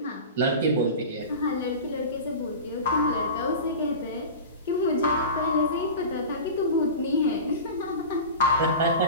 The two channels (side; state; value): both; inverted; correlation -0.31